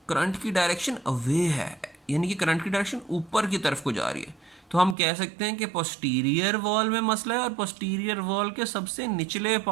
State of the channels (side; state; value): left; drops out; at 5.0 s